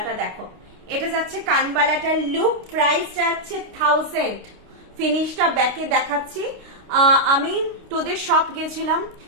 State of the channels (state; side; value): late; left; 29 ms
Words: দেখো। এটা যাচ্ছে কানবালাটার লুক, প্রাইস যাচ্ছে 1000। ফিনিশটা ব্যাকে দেখাচ্ছি। আমি তোদের শপ গেছিলাম